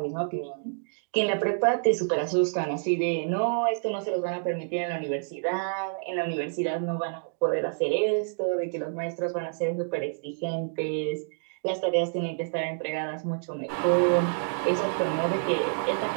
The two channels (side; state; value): left; silent; digital silence